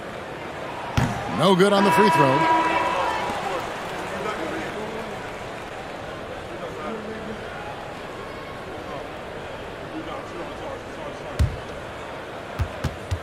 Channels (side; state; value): both; identical; correlation 1.00